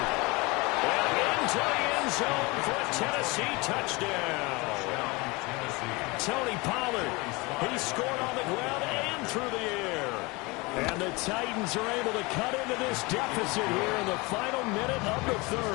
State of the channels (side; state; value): right; quieter; 25.2 dB